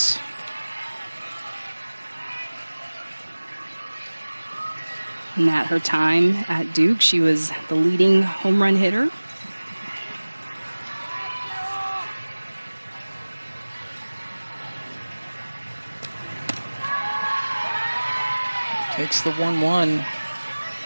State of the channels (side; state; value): both; inverted; correlation -1.00